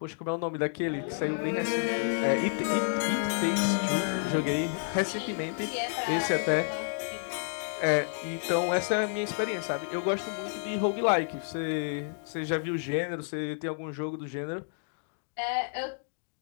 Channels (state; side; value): silent; right; digital silence